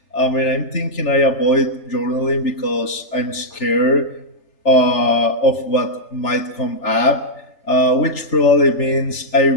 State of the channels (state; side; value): late; right; 3.4 ms